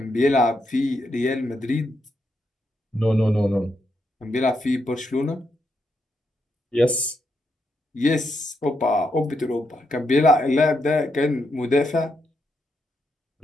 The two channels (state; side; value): normal; both; correlation 0.81